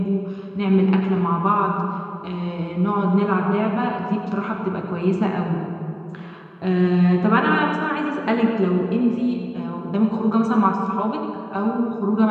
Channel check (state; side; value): identical; both; correlation 1.00